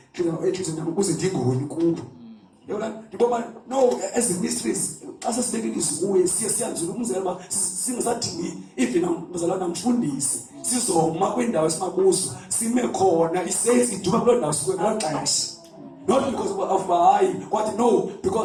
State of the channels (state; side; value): identical; both; correlation 1.00